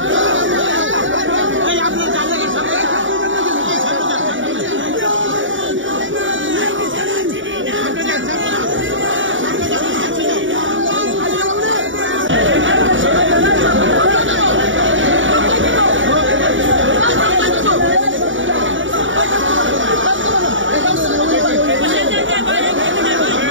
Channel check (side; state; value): left; late; 0.56 ms